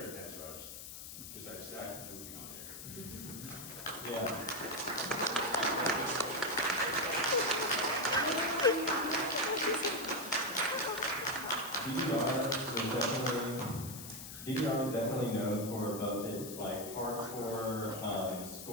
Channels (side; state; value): left; noise; hiss, 10 dB below the sound